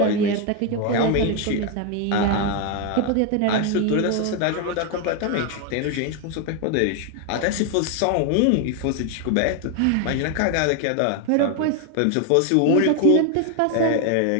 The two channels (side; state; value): both; different; correlation 0.01